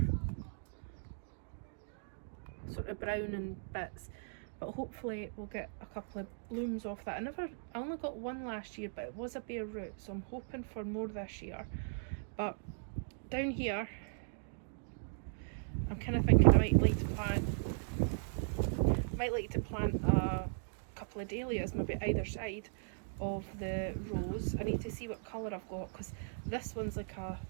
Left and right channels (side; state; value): left; silent; digital silence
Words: sort of brown in bits. But hopefully we'll get a couple of blooms off that. I only got one last year, but it was a bare root, so I'm hoping for more this year. But down here, I'm kind of thinking I might like to plant a couple of dahlias, maybe either side of the rose. I need to see what colour I've got, because this one's like a